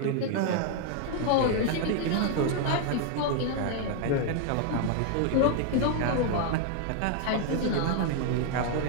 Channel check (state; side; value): different; both; correlation 0.00